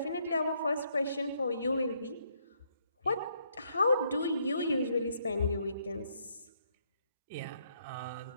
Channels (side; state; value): both; inverted; correlation -0.72